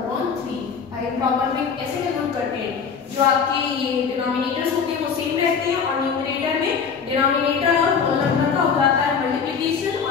भाई प्रॉपर में ऐसे कन्वर्ट करते हैं. जो आपके ये डिनोमिनेटर्स होते हैं वो सेम रहते हैं और न्यूमरेटर में डिनोमिनेटर और होल नंबर का हो जाता है मल्टीप्लिकेशन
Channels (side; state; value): right; quieter; 6.2 dB